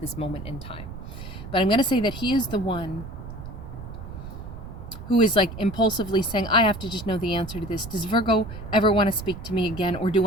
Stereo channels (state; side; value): noise; right; rumble, 11 dB below the sound